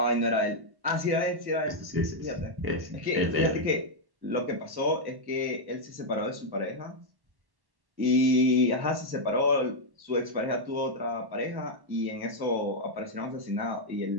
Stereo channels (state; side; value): late; left; 1.1 ms